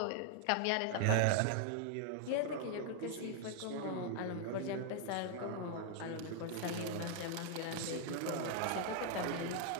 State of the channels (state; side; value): different; both; correlation 0.00